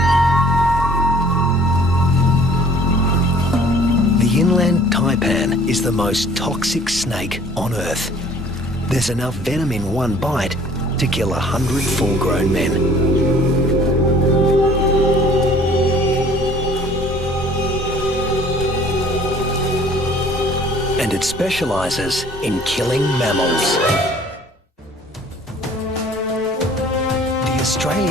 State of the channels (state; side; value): normal; both; correlation 0.53